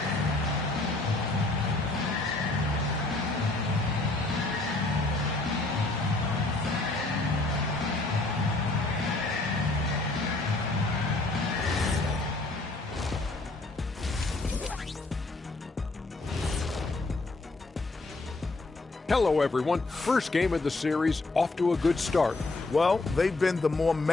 Hello, everyone. First game of the series, off to a good start. Well, they've been the more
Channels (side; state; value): right; quieter; 3.1 dB